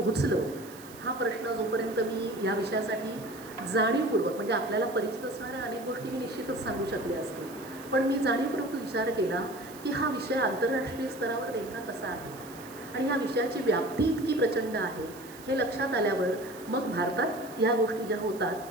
हा प्रश्न जोपर्यंत मी या विषयासाठी जाणीवपूर्वक, म्हणजे आपल्याला परिचित असणाऱ्या अनेक गोष्टी मी निश्चितच सांगू शकले असते, पण मी जाणीवपूर्वक विचार केला की हा विषय आंतरराष्ट्रीय स्तरावर नेमका कसा आहे आणि ह्या विषयाची व्याप्ती इतकी प्रचंड आहे हे लक्षात आल्यावर मग भारतात या गोष्टी ज्या होतात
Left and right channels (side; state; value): right; noise; hiss, 19 dB below the sound